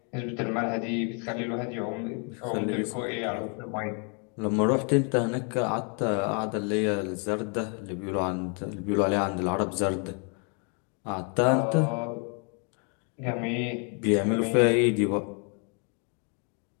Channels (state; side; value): quieter; right; 38.5 dB